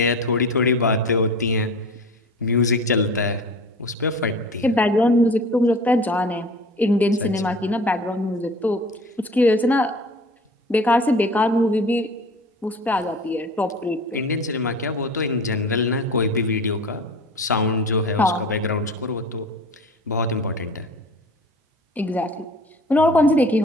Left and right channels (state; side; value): normal; both; correlation 0.40